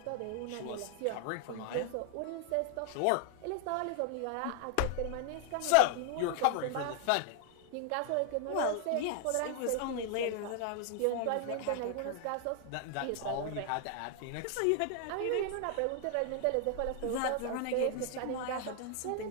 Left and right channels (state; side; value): different; both; correlation 0.00